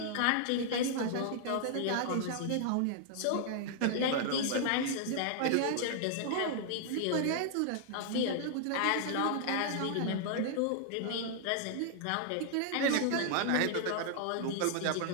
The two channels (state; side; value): different; both; correlation -0.01